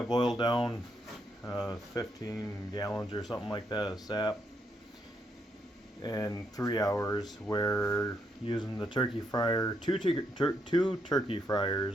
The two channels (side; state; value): both; normal; correlation 0.77